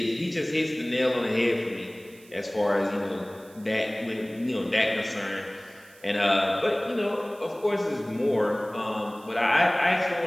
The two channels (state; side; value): noise; right; hiss, 25 dB below the sound